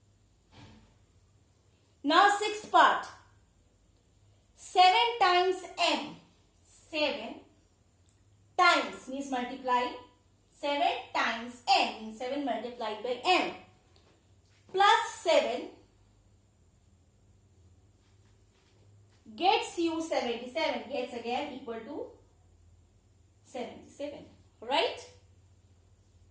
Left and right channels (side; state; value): both; identical; correlation 1.00